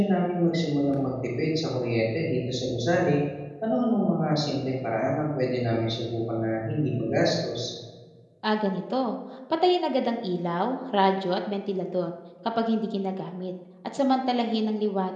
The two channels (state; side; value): identical; both; correlation 1.00